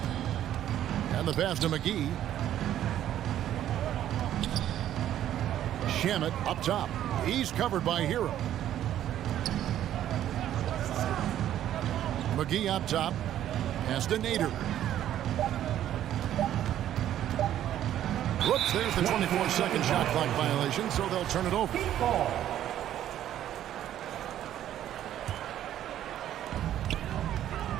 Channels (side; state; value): left; quieter; 11.6 dB